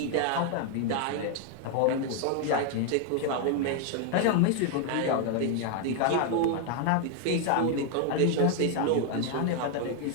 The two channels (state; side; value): different; both; correlation 0.01